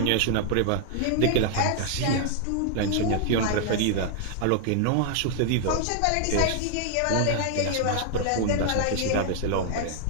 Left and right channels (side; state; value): both; different; correlation 0.00